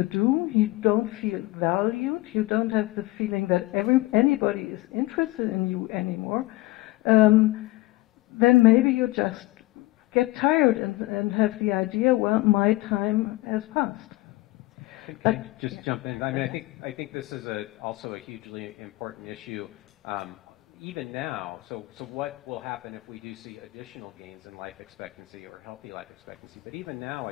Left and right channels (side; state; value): right; quieter; 20.1 dB